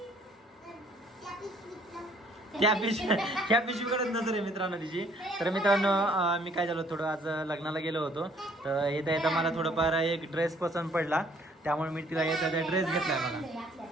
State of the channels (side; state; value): both; normal; correlation 0.61